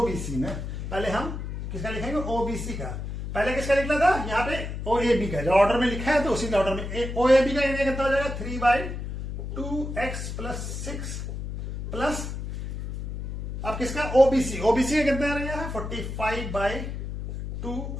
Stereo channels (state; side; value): noise; left; hum, 6 dB below the sound